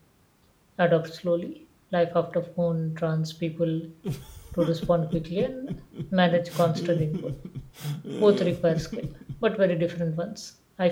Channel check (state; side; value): identical; both; correlation 1.00